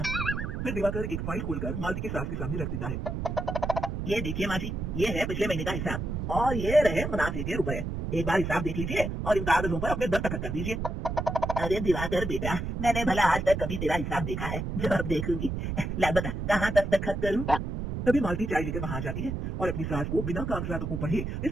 फिर दिवाकर एक फाइल खोलकर मालती की सास के सामने रख देता है। ये देखिए माँ जी, ये है पिछले महीने का हिसाब, और ये रहे मुनाफे के रुपए। एक बार हिसाब देख लीजिए और इन कागजों पर अपने दस्तखत कर दीजिए। अरे दिवाकर बेटा, मैंने भला आज तक कभी तेरा हिसाब देखा है? जब देखूंगी। ला बता, कहाँ दस्तखत करूँ? तभी मालती चाय लेकर वहां जाती है और अपनी सास को बिना कागजातों को पढ़े इस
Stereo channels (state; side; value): noise; right; rumble, 3 dB below the sound